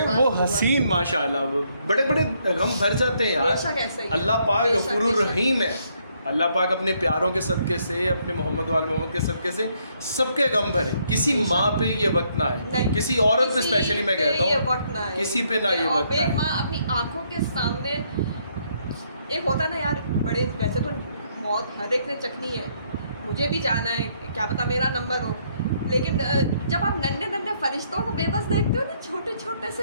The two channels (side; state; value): both; inverted; correlation -0.71